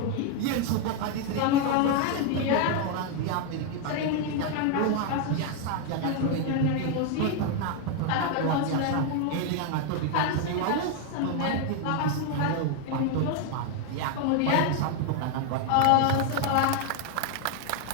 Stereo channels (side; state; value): both; different; correlation 0.01